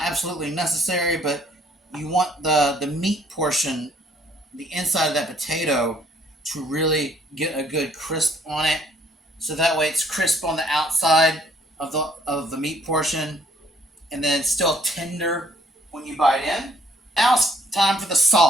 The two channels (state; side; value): normal; both; correlation 0.63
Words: absolutely necessary, but you want the meat portion, the inside of that potato, to really get a good crisp on it. So that way it's crisp on the outside of the meat portion, and then still tender when you bite in. Now it's time for the